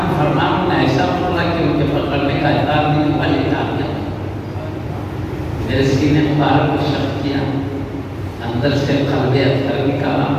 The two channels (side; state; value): both; identical; correlation 1.00